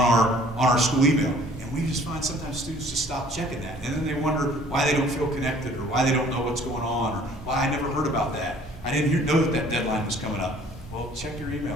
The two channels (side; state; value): both; normal; correlation 0.55